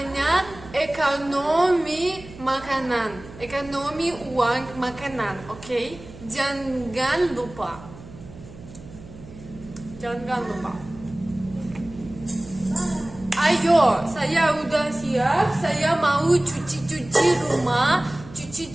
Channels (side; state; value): right; noise; hum, 17 dB below the sound